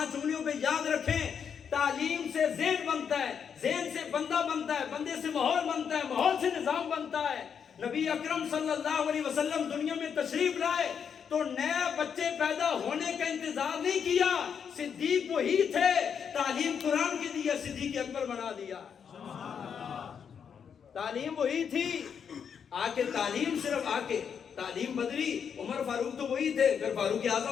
انگلیوں پہ یاد رکھیں، تعلیم سے ذہن بنتا ہے، ذہن سے بندہ بنتا ہے، بندے سے ماحول بنتا ہے، ماحول سے نظام بنتا ہے۔ نبی اکرم صلی اللہ علیہ وسلم دنیا میں تشریف لائے تو نئے بچے پیدا ہونے کا انتظار نہیں کیا، صدیق وہی تھے، تعلیم قرآن کی دی ہے، صدیق اکبر بنا دیا۔ تعلیم وہی تھی، آکے تعلیم صرف آکے تعلیم بدلی، عمر فاروق تو وہی تھے، پھر فاروق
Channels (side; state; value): right; quieter; 7.3 dB